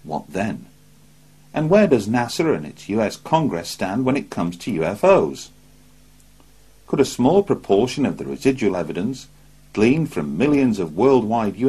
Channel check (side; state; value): both; identical; correlation 1.00